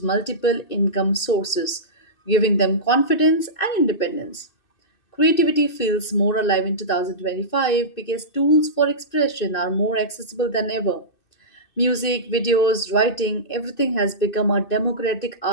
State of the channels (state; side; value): late; right; 2.6 ms